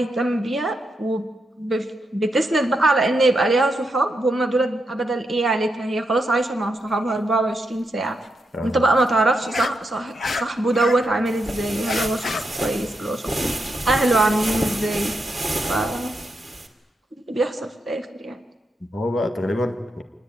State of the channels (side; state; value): both; normal; correlation 0.83